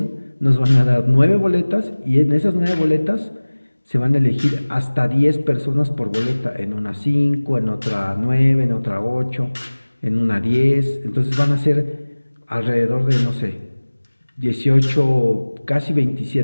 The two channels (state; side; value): inverted; both; correlation -1.00